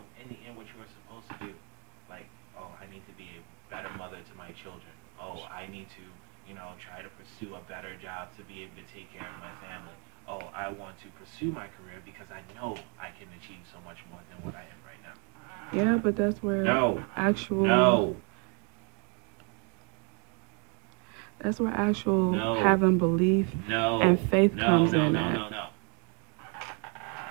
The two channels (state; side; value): quieter; left; 36.3 dB